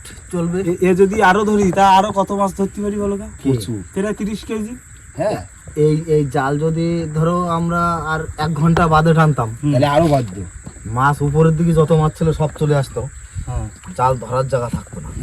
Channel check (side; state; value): both; identical; correlation 1.00